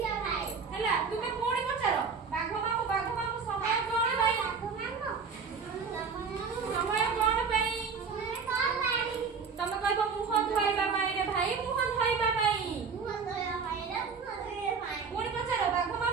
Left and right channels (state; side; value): quieter; left; 5.5 dB